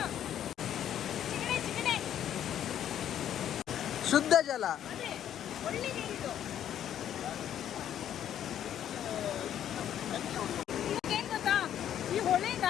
ಶುದ್ಧ ಜಲ. ಏನ್ ಗೊತ್ತಾ, ಈ ಹೊಳೆ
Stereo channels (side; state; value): right; quieter; 10.4 dB